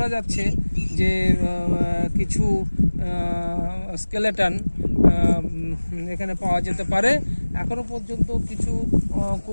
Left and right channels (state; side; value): inverted; both; correlation -1.00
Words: যাচ্ছে যে কিছু স্কেলেটন এখানে পাওয়া যেতে পারে। এখনও পর্যন্ত কিছু